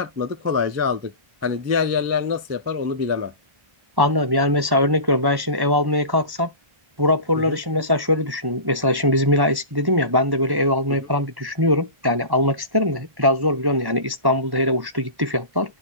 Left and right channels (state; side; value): late; left; 1.1 ms